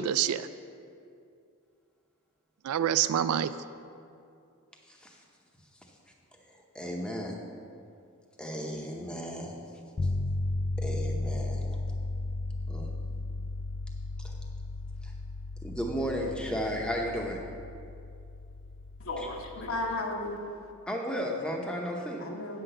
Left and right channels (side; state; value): both; normal; correlation 0.44